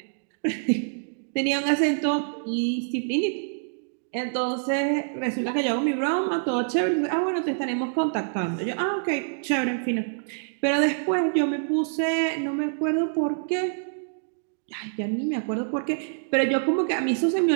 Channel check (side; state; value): left; silent; digital silence